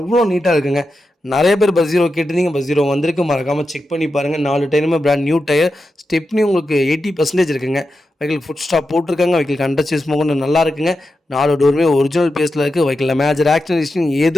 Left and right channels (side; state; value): both; normal; correlation 0.89